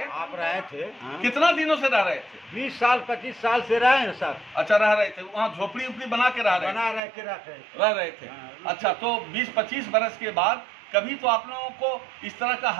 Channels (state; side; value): drops out; left; at 7.0 s